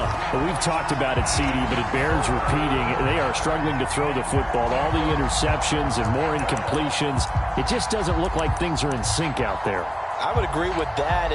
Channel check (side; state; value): both; identical; correlation 1.00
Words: Well, we've talked about it, CD, but it bears repeating. They are struggling to throw the football. All the interceptions and more incompletions. It just doesn't look like things are in sync out there. I would agree with that,